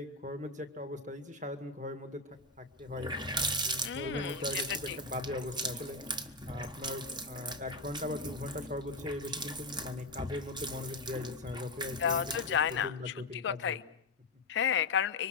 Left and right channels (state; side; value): quieter; right; 3.3 dB